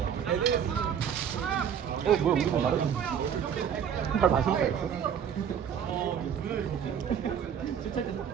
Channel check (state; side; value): quieter; left; 8.2 dB